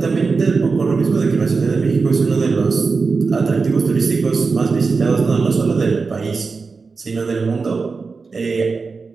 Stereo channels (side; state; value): left; quieter; 4.5 dB